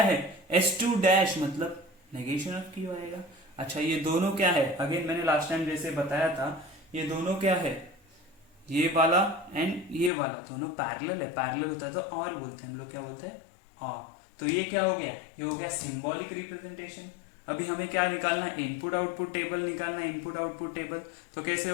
है S2 डैश मतलब नेगेशन ऑफ Q आएगा। अच्छा ये दोनों क्या है, अगेन मैंने लास्ट टाइम जैसे बताया था, ये दोनों क्या है, ये वाला एंड ये वाला दोनों पैरेलल है, पैरेलल होता है तो और बोलते हैं हम लोग, क्या बोलते हैं और। तो ये क्या हो गया, ये हो गया सिंबॉलिक रिप्रेजेंटेशन। अभी हमें क्या निकालना है, इनपुट आउटपुट टेबल निकालना है, इनपुट आउटपुट टेबल। तो कैसे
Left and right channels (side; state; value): right; drops out; at 10.1 s